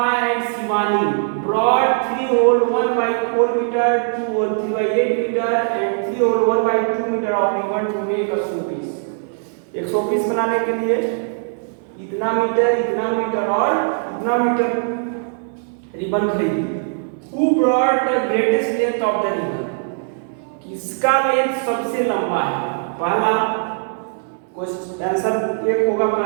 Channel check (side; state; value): left; silent; 66 dB below the other